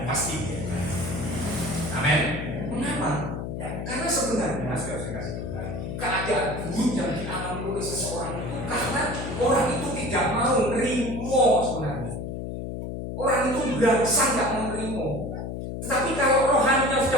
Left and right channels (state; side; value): noise; left; hum, 5 dB below the sound